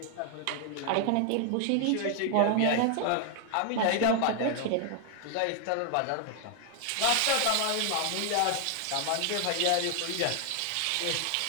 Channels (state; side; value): different; both; correlation 0.00